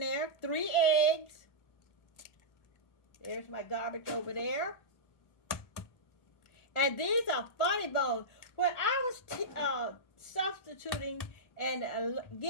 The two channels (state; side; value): late; right; 1.4 ms